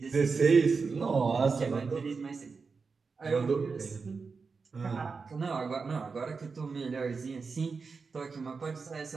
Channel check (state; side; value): quieter; left; 4.8 dB